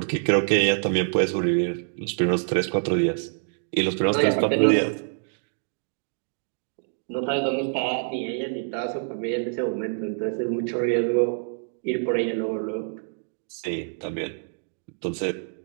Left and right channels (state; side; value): silent; left; digital silence